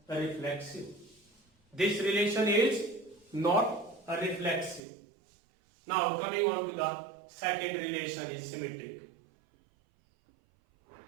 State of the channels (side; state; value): left; drops out; at 4.8 s